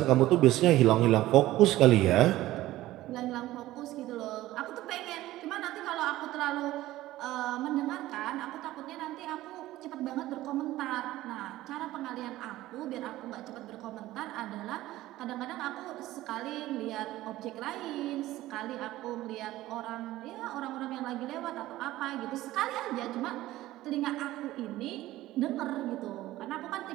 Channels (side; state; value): left; quieter; 16.0 dB